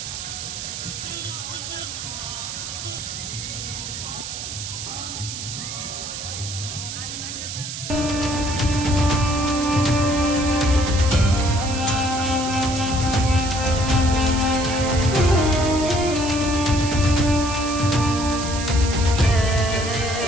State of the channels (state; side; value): noise; right; hiss, 7 dB below the sound